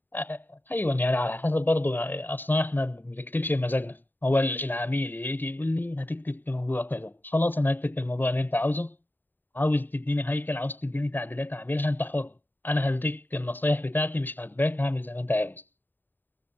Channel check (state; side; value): late; right; 0.091 ms